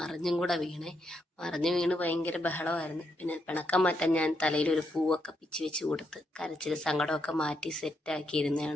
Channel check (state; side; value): normal; both; correlation 0.79